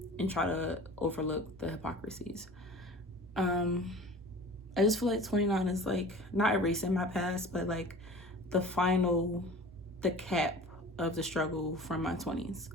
try to overlook the hypocrisies. I just feel 29 is not erasing my past, but the cap of the struggle from my 20s.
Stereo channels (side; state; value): both; normal; correlation 0.40